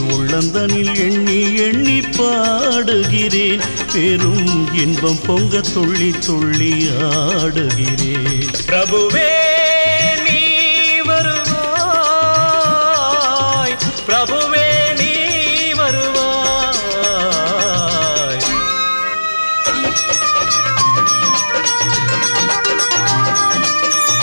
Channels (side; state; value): both; inverted; correlation -1.00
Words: உள்ளந்தனில் எண்ணி எண்ணி பாடுகிறேன். பெரும் இன்பம் பொங்க துள்ளி துள்ளி ஆடுகிறேன். பிரபுவே நீ வருவாய், பிரபுவே நீ வருவாய்.